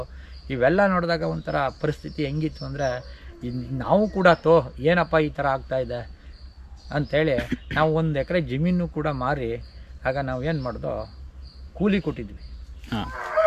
ಇವೆಲ್ಲ ನೋಡಿದಾಗ ಒಂಥರ ಪರಿಸ್ಥಿತಿ ಹೆಂಗಿತ್ತು ಅಂದರೆ ನಾವು ಕೂಡ ಏನಪ್ಪ ಈ ಥರ ಆಗ್ತಾಯಿದೆ ಅಂಥೇಳಿ ನಾವು 1 ಎಕರೆ ಜಮೀನು ಕೂಡ ಮಾರಿ ಆಗ ನಾವು ಏನು ಮಾಡ್ದೋ ಕೂಲಿ ಕೊಟ್ಟಿದ್ವಿ.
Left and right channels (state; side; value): identical; both; correlation 1.00